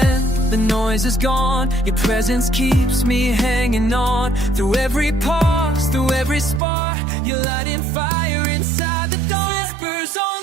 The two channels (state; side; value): drops out; left; at 6.6 s